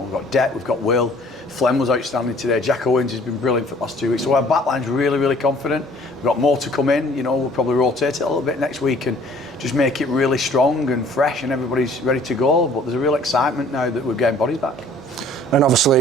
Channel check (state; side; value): normal; both; correlation 0.54